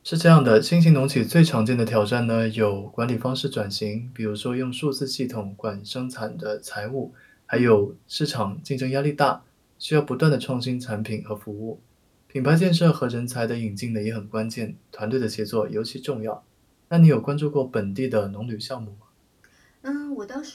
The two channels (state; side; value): identical; both; correlation 1.00